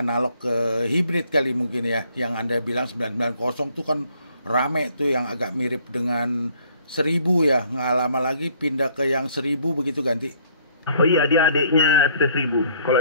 ke hibrid kali mungkin ya, yang Anda bilang 990 tuh kan rame tuh, yang agak mirip dengan 1000 ya, nggak lama lagi pindah ke yang 1000 begitu ganti. Oh iya, dia adiknya FT 1000.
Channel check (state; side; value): inverted; both; correlation -0.62